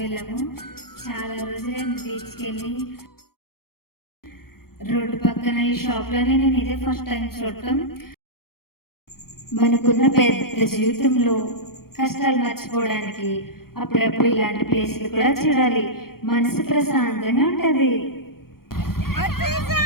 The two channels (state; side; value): late; right; 0.93 ms